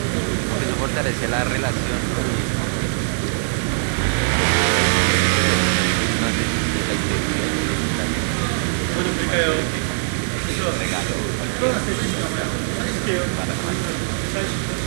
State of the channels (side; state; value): left; silent; digital silence